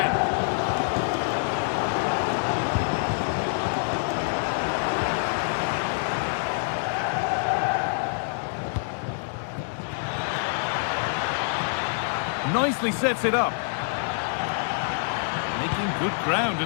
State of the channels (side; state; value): right; silent; 61 dB below the other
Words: Nicely sets it up. Making good ground